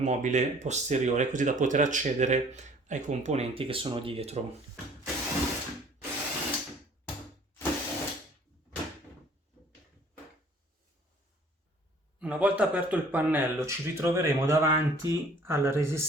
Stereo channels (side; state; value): both; normal; correlation 0.54